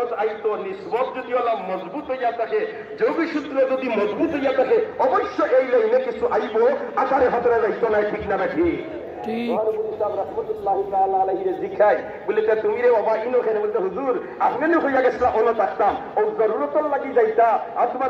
আইতো নিসবত যদি ওলা মজবুত হইয়া থাকে, যোগী সূত্র যদি মজবুত হইয়া থাকে, অবশ্য এই লাইনে কিছু আইব, আকারে হাতরে যাইতো না, ঠিক না নাকি? আমার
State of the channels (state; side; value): identical; both; correlation 1.00